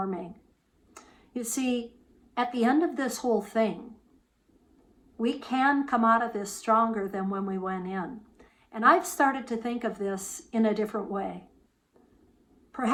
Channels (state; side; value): identical; both; correlation 1.00